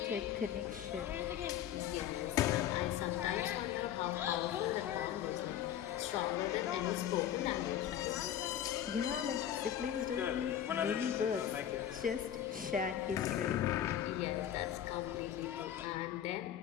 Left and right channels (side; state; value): right; quieter; 10.4 dB